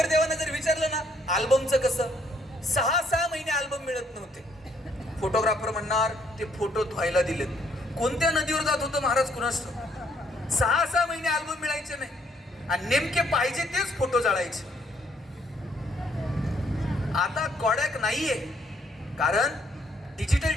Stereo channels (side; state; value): both; normal; correlation 0.68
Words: जर विचारलं ना अल्बमचं कसं, 6 महिने अल्बम मिळत नव्हते. फोटोग्राफर म्हणणार ते फोटो धुवायला दिलेत. कोणत्या नदीवर जात होतं महाराज कुणास ठाऊक. 6 महिने अल्बम मिळायचे नाही आणि नेमके पाहिजे तेच फोटो जाळायचे. आता कॉडॅक नाहीये, कारण डिजिटल